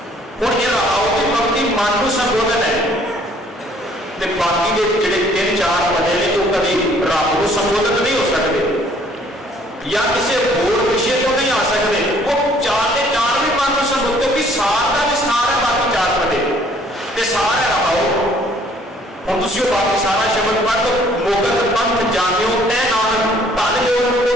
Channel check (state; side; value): normal; both; correlation 0.60